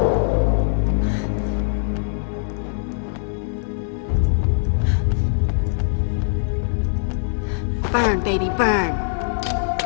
Burn, baby, burn.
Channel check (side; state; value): right; silent; digital silence